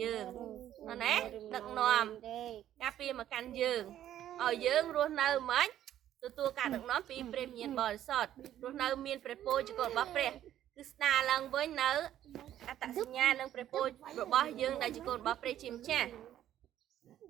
យើងណាដឹកនាំការពារមកកាន់យើងឲ្យយើងរស់នៅមិនទទួលការដឹកនាំពីព្រះវិញ្ញាណបរិសុទ្ធរស់នៅមានព្រះពរជាកូនរបស់ព្រះគឺ គឺស្ដារឡើងវិញនៅអត្តសញ្ញាណនិងព្រះពររបស់យើងដែលជាកូនរបស់ព្រះជាម្ចាស់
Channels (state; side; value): quieter; left; 11.8 dB